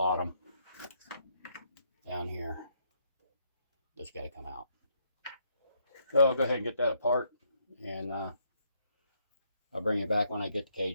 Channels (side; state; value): both; inverted; correlation -0.73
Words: down here that's got to come out. So I'll go ahead and get that apart, and I'll bring you back when I get the